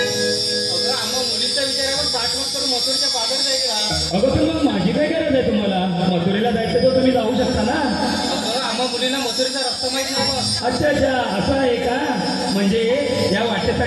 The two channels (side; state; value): both; identical; correlation 1.00